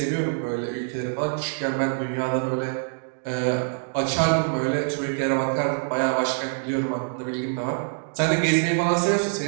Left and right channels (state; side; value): silent; left; digital silence